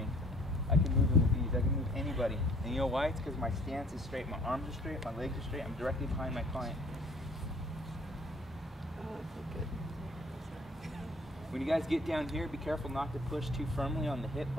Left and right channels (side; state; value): both; normal; correlation 0.56